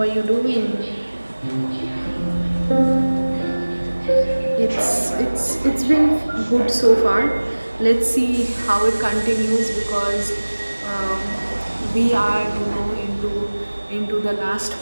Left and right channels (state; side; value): inverted; both; correlation -1.00